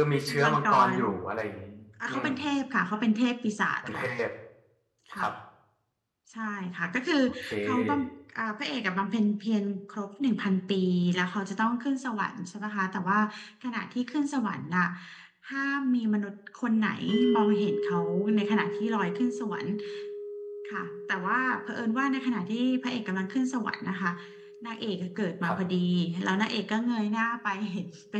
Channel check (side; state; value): both; identical; correlation 1.00